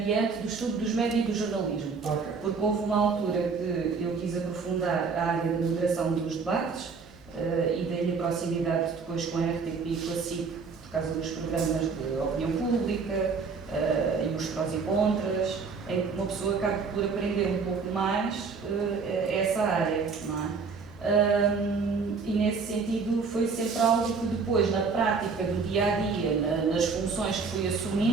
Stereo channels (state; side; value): quieter; left; 5.0 dB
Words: do estudo dos médias e do jornalismo. Okay. Porque houve uma altura que eu quis aprofundar a área da moderação dos debates e daí a proximidade depois com a RTP e com a SIC, por causa dos programas de opinião pública e os prós e contras, em que uma pessoa acaba por aprender um pouco mais essa área, não é? E nesse sentido foi sempre algo que depois, na prática do dia-a-dia, nas funções que fui